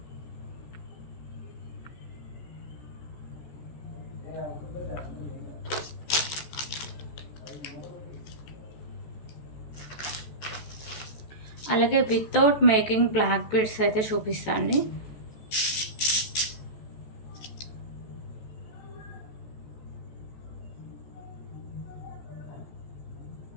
అలాగే వితౌట్ మేకింగ్ బ్లాక్ బీడ్స్ అయితే చూపిస్తాండి.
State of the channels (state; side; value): late; right; 14 ms